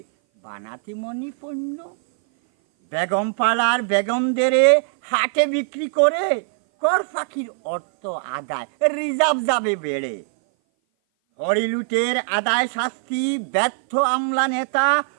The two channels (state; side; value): silent; left; 58 dB below the other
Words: বানাতে মনি পণ্য। বেগম পাড়ার বেগমদের হাটে বিক্রি করে কর ফাঁকির অর্থ আদায় রিজার্ভ যাবে বেড়ে। হরিলুটের আদায় শাস্তি ব্যর্থ আমলা নেতা,